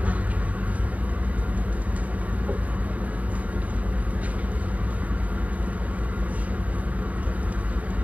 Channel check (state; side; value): late; left; 0.070 ms